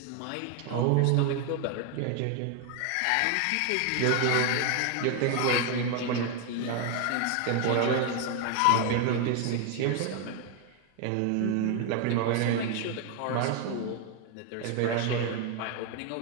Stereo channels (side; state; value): both; different; correlation 0.01